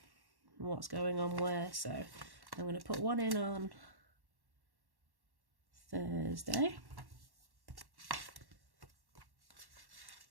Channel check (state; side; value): late; left; 1.1 ms